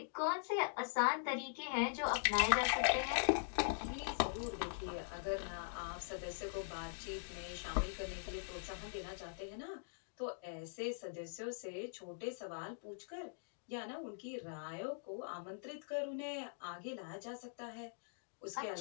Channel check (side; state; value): right; silent; digital silence